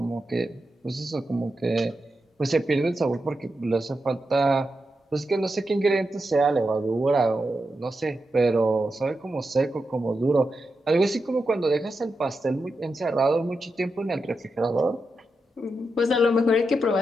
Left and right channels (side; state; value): both; normal; correlation 0.87